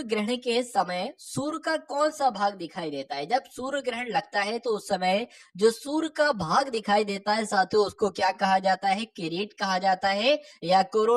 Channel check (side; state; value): both; identical; correlation 1.00